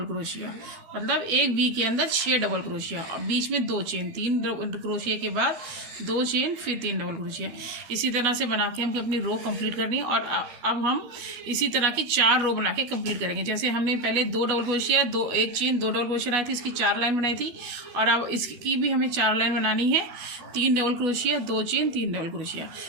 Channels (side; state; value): left; late; 12 ms